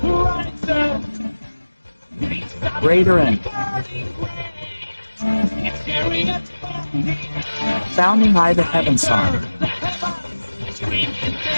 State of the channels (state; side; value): inverted; both; correlation -1.00